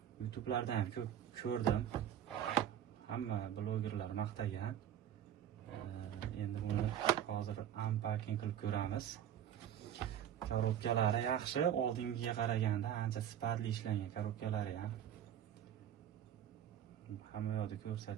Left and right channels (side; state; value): left; quieter; 10.1 dB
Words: YouTube'lardan ham ko'p ko'rdim. Hamma blogerlar maqtagan. Endi buni hozir unpacking qilib ko'ramiz. Korobkalari yaxshi, oldingiga qaraganda ancha sifatli ishlangan korobkalari ham. Hamma yoqda